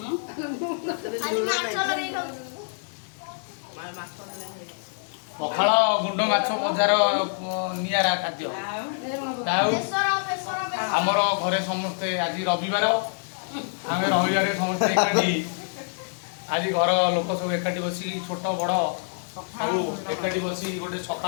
खाली माछ लगे खाऊ पखाल गुंड माछ बजार नियारा खाद्य आमर घरे समस्ते आज रविवार आम रविवार समस्ते एकाठी आज घर लोक सब एकाठी बसी छोट बड़ सब एकाठी बसी गोटे सका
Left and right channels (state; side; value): silent; right; digital silence